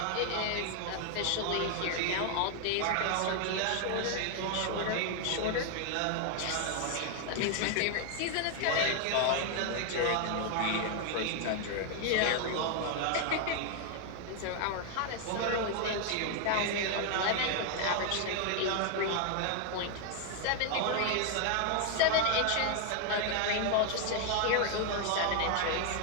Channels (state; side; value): different; both; correlation 0.00